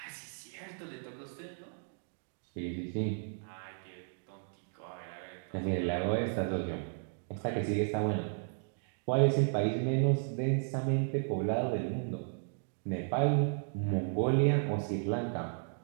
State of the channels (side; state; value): left; silent; 55 dB below the other